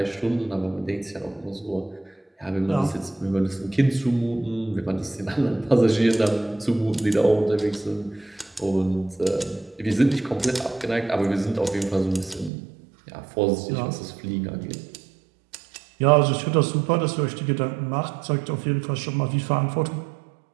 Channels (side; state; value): left; drops out; at 12.5 s